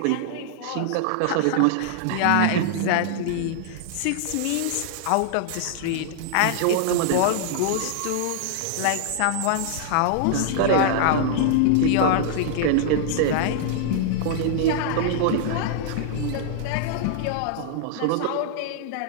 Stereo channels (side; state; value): both; different; correlation -0.01